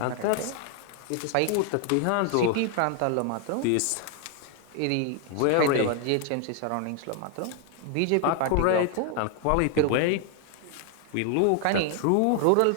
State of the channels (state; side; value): different; both; correlation 0.00